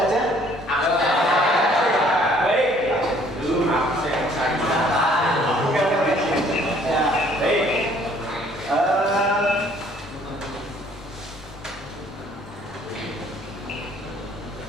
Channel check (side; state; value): both; normal; correlation 0.59